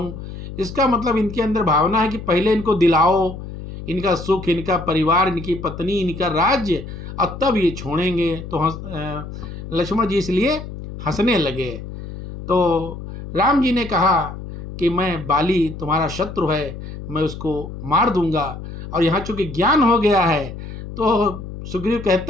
इसका मतलब इनके अंदर भावना है कि पहले इनको दिलाओ इनका सुख, इनका परिवार, इनकी पत्नी, इनका राज्य, और तब ये छोड़ेंगे। तो लक्ष्मण जी इसलिए हंसने लगे। तो राम जी ने कहा कि मैं बाली तुम्हारा शत्रु है, मैं उसको मार दूंगा। और यहाँ चूँकि ज्ञान हो गया है तो सुग्रीव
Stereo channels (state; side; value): noise; left; hum, 10 dB below the sound